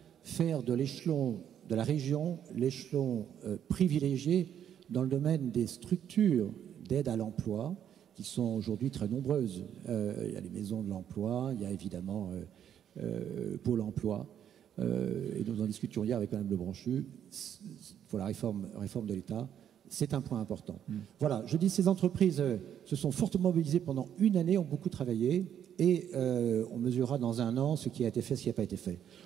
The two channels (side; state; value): left; quieter; 9.5 dB